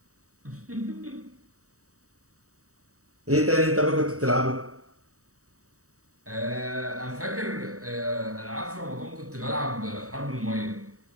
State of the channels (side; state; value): left; late; 0.65 ms